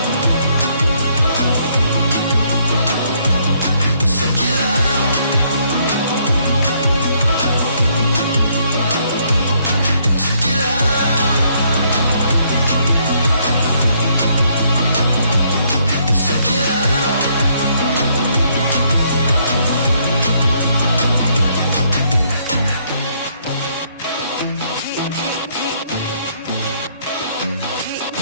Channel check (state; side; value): inverted; both; correlation -0.69